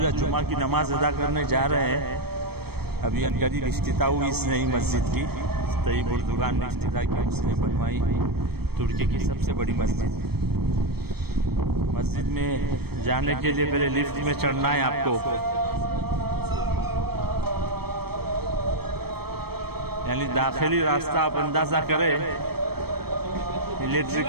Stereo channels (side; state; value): left; late; 0.96 ms